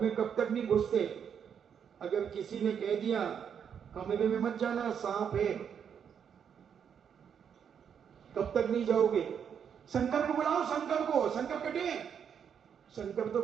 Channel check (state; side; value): quieter; left; 7.8 dB